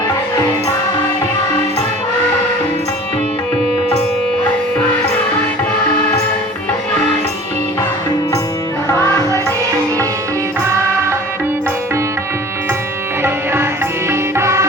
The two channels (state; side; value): normal; both; correlation 0.44